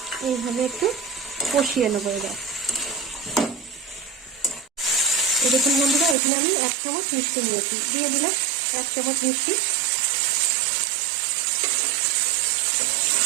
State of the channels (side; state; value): left; drops out; at 6.2 s